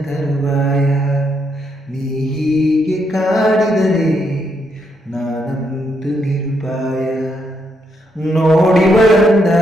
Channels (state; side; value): normal; both; correlation 0.77